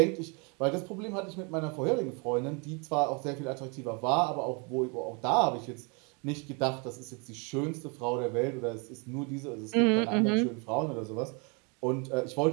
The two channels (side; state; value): left; quieter; 33.2 dB